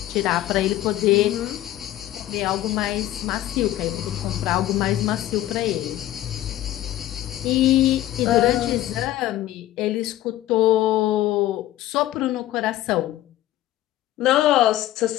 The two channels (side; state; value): right; quieter; 14.1 dB